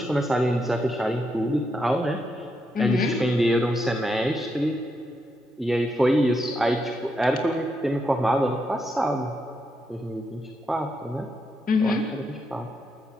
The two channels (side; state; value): both; normal; correlation 0.81